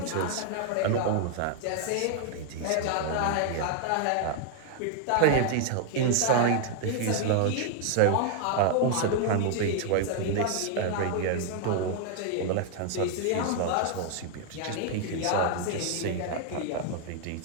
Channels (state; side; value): different; both; correlation 0.00